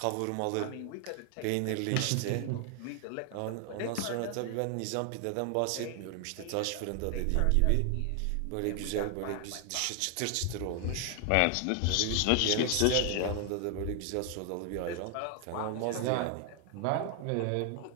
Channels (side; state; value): both; different; correlation 0.00